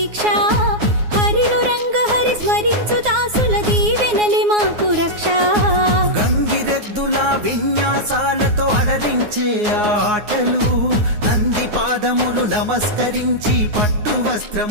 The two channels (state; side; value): late; left; 9.6 ms